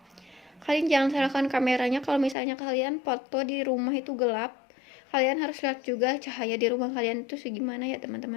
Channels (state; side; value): drops out; right; at 2.4 s